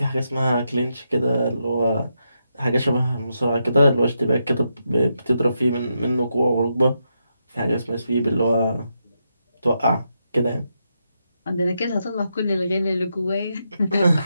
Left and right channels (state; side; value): inverted; both; correlation -0.84